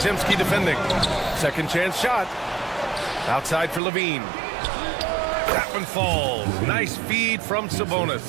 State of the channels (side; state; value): left; drops out; at 3.8 s